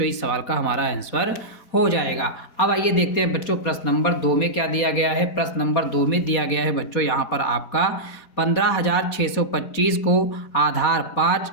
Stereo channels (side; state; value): right; late; 4.1 ms